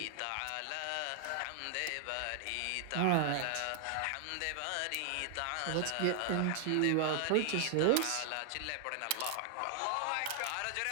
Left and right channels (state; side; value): different; both; correlation 0.00